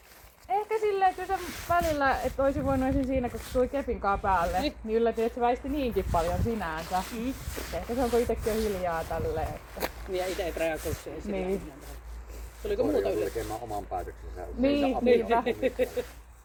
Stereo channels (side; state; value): both; identical; correlation 1.00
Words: ehkä silleen kyllä se välillä, että olisi voinut esim. Siinä, kun tuli kepinkaan päälle, niin yllätin, että se väisti niinkin paljon sinänsä. Ehkä se onko itsekin jo hiljaa tälleen. Että... Niin ja itse et reagoi siihen. Niin. Tuliko muuta yllätys? Tekemään oman päätöksensä. Niin, niinpä.